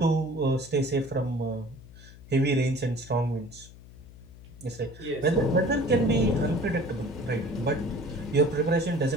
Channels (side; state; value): left; noise; hum, 19 dB below the sound